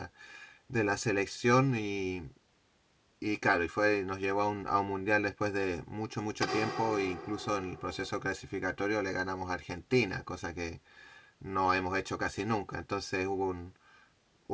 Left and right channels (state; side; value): identical; both; correlation 1.00